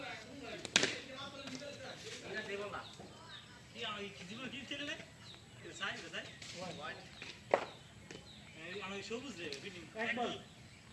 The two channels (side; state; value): both; identical; correlation 1.00